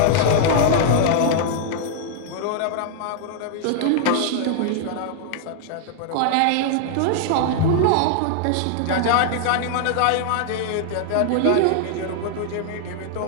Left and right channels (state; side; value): different; both; correlation -0.01